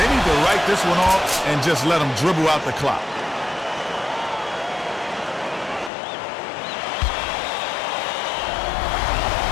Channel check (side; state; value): right; drops out; at 5.9 s